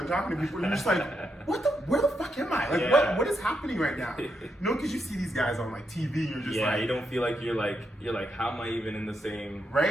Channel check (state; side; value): normal; both; correlation 0.82